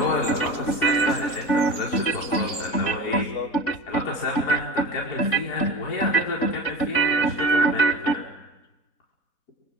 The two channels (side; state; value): right; late; 4.1 ms